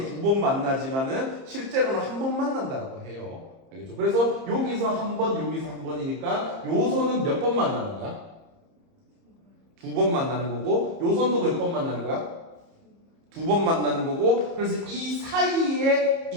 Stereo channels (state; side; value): late; left; 30 ms